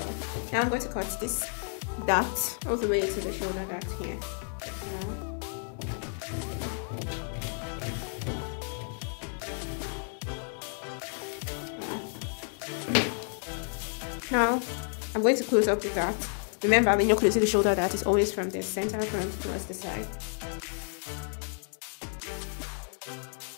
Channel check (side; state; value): right; silent; 57 dB below the other